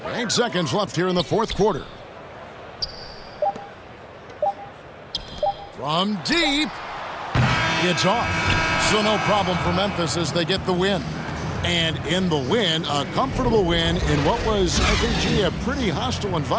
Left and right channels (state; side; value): identical; both; correlation 1.00